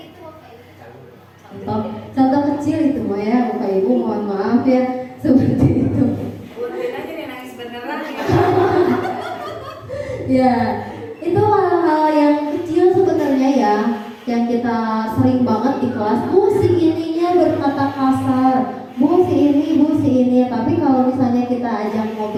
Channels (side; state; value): both; identical; correlation 1.00